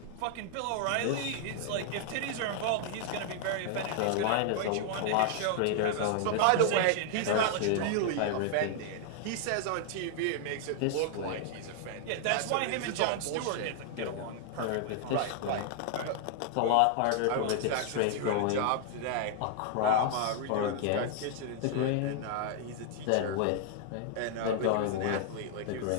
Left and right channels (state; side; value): different; both; correlation 0.00